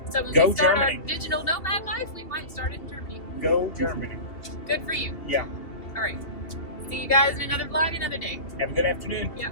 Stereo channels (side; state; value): right; late; 2.8 ms